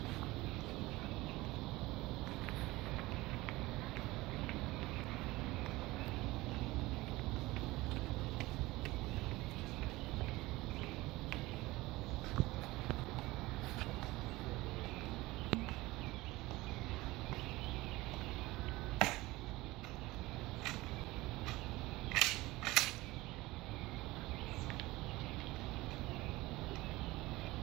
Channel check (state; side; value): quieter; left; 19.8 dB